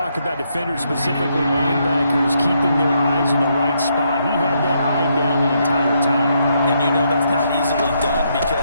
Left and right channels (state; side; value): inverted; both; correlation -0.76